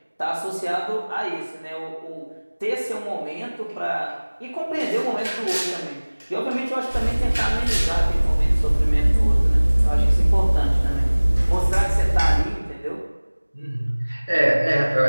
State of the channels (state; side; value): inverted; both; correlation -1.00